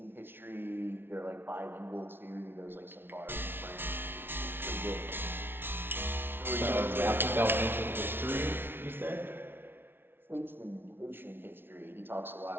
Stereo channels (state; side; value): late; left; 0.11 ms